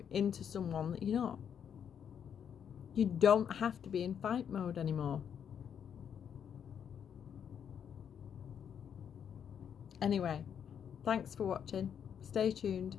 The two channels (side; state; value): right; quieter; 8.2 dB